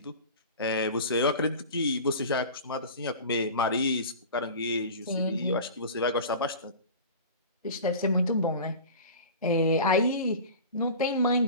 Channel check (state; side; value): inverted; both; correlation -0.35